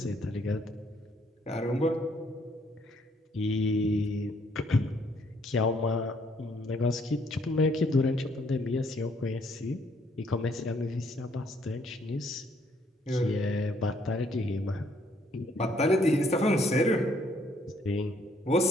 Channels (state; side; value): normal; both; correlation 0.67